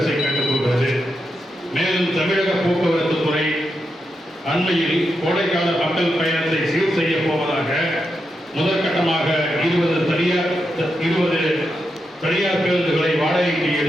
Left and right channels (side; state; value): both; normal; correlation 0.85